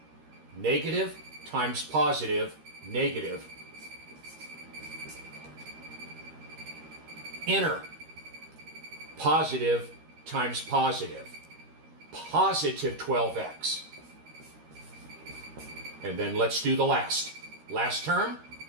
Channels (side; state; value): left; late; 13 ms